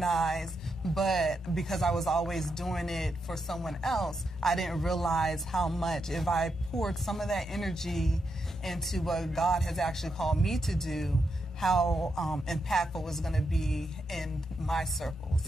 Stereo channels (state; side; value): normal; both; correlation 0.84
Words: but because I was always doing it for someone else, I didn't realize how much, if I poured some of that energy into what God has actually called me to do, how impactful it was going to be in my circles,